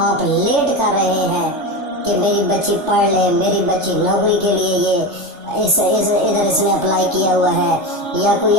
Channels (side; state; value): left; late; 3.4 ms